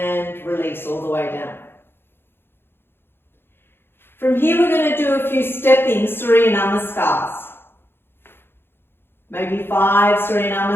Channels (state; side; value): late; right; 0.11 ms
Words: release all the way down. From here we're going to do a few stepping Surya Namaskars. Maybe 5 Surya